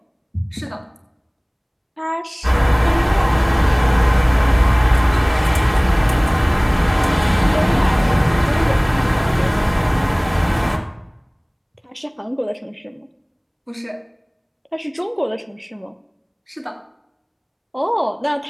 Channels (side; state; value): both; identical; correlation 1.00